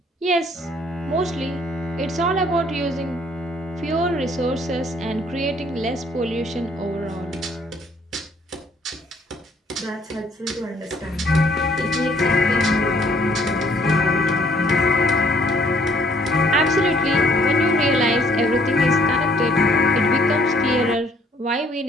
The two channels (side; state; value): both; normal; correlation 0.62